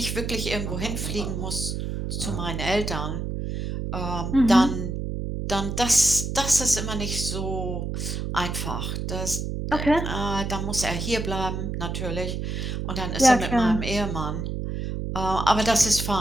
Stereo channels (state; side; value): noise; right; hum, 3 dB below the sound